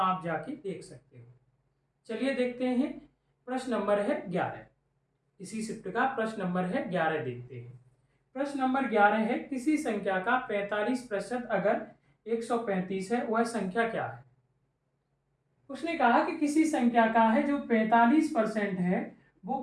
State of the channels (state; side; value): identical; both; correlation 1.00